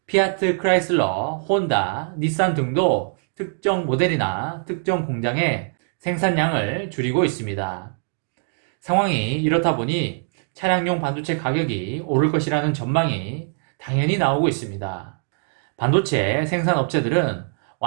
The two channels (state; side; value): silent; left; digital silence